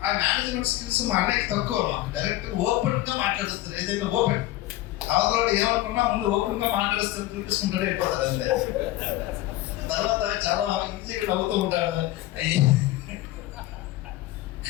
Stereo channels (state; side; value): quieter; right; 15.8 dB